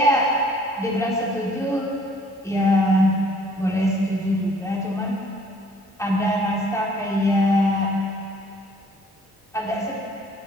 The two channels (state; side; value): normal; both; correlation 0.58